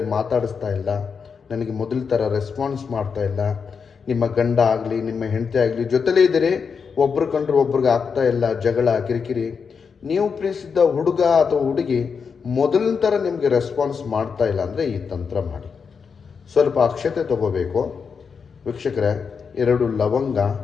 ಮಾತಾಡಿಸ್ತಾ ಇಲ್ಲ, ನನಗೆ ಮೊದಲ ಥರ ರೆಸ್ಪಾನ್ಸ್ ಮಾಡ್ತಾ ಇಲ್ಲ, ನಿಮ್ಮ ಗಂಡ ಆಗಲಿ ನಿಮ್ಮ ಹೆಂಡತಿ ಆಗಲಿ ಜೊತೆಲೇ ಇದ್ದೀರಿ, ಒಬ್ರು ಕಂಡ್ರೆ ಒಬ್ರಿಗೆ ಆಗ್ತಾ ಇಲ್ಲ, ಜಗಳ ಕಿರಿಕಿರಿ, ನೀವು ಪ್ರೀತಿಸಿದ್ದ ಹುಡುಗ ಅಥವಾ ಹುಡುಗಿ ಮೊದಲಿನ ಥರ ನಿಮಗೆ ರೆಸ್ಪಾನ್ಸ್ ಮಾಡ್ತಾ ಇಲ್ಲ ಅಂದರೆ ಈ ತಂತ್ರ ಮಾಡಿ. ಸ್ವಲ್ಪ ಅಕ್ಷತೆ ತಗೋಬೇಕು ವೀಕ್ಷಕರೇ, 2 ಲವಂಗ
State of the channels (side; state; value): right; quieter; 5.9 dB